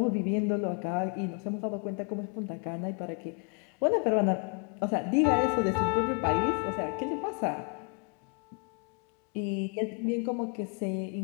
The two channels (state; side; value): quieter; right; 34.1 dB